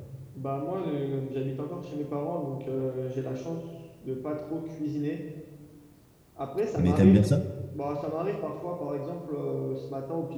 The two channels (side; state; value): both; identical; correlation 1.00